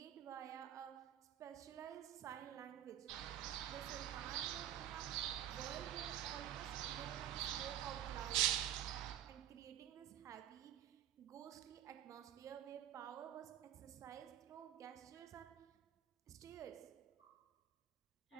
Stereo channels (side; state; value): left; quieter; 11.2 dB